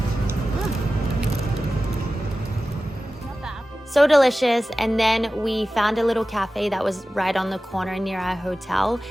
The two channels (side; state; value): both; normal; correlation 0.95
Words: So delicious. And then we found a little cafe that was right on the corner near our hotel.